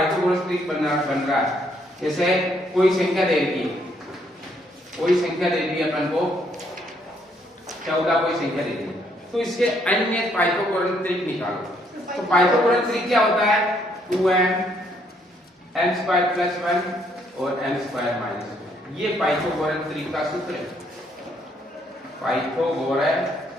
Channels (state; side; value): normal; both; correlation 0.70